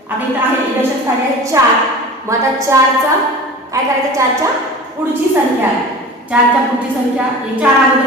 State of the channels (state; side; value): normal; both; correlation 0.37